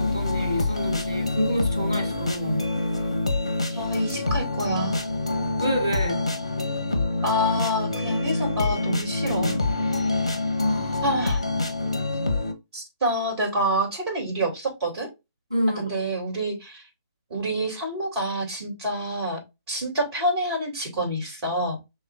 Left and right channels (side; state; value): both; inverted; correlation -0.66